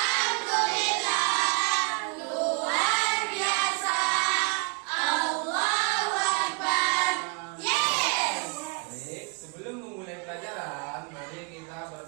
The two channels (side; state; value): left; quieter; 34.0 dB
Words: luar biasa. Allahu Akbar. Yes. Baik, sebelum memulai pelajaran, mari kita